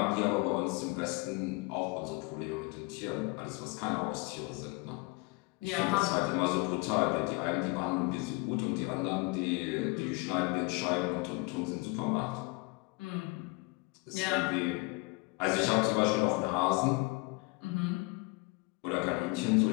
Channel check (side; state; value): right; quieter; 27.4 dB